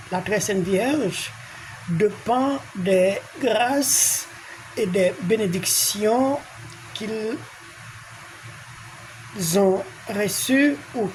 la très Sainte Vierge dépend des grâces et des bénédictions qu'ils ont reçues ou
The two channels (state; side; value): identical; both; correlation 1.00